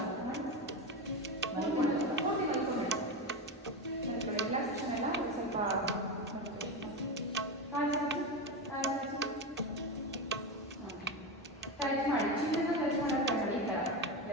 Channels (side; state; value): both; normal; correlation 0.17